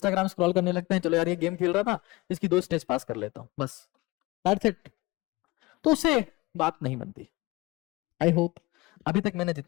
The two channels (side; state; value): right; quieter; 21.6 dB